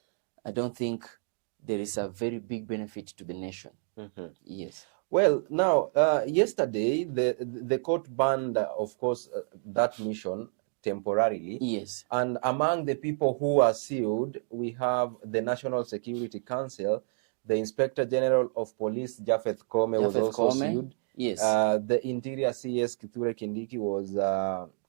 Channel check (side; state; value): left; silent; 58 dB below the other